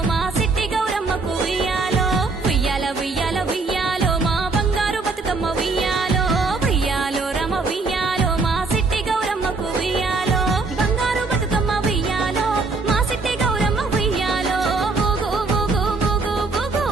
మా సిట్టి గౌరమ్మకు ఉయ్యాలో ఉయ్యాల ఉయ్యాల ఉయ్యాలో మా బంగారు బతుకమ్మ ఉయ్యాలో ఉయ్యాలో రమ ఉయ్యాలో మా సిట్టి గౌరమ్మకు ఉయ్యాలో బంగారు బతుకమ్మ ఉయ్యాలో మా సిట్టి గౌరమ్మ ఉయ్యాలో ఊగు ఊగు ఊగు ఊగు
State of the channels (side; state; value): left; quieter; 3.9 dB